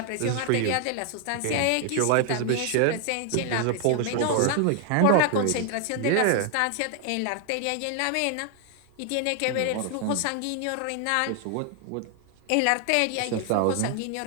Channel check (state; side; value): different; both; correlation 0.00